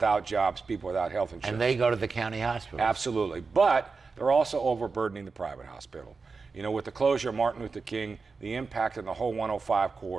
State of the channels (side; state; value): left; quieter; 4.5 dB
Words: jobs, people without health insurance. And they go to the county hospital. Absolutely, but they're also overburdening the private hospital. You know, with the closure of Martin Luther King, the impact on the whole 105